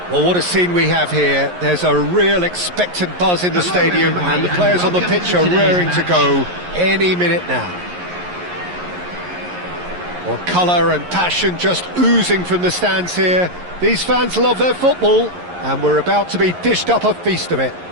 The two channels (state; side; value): late; left; 11 ms